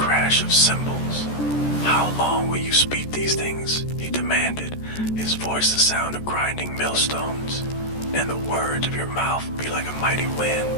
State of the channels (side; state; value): right; late; 14 ms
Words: of cymbals. How long will you speak these things? He demanded, his voice the sound of grinding millstones, and the words of your mouth be like a mighty